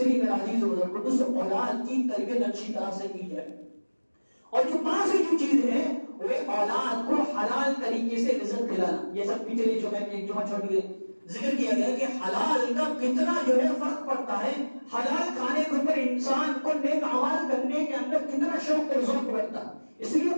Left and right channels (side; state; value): both; inverted; correlation -1.00